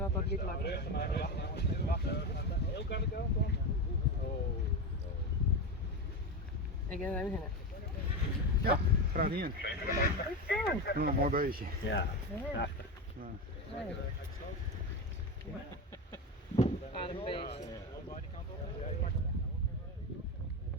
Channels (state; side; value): normal; both; correlation 0.18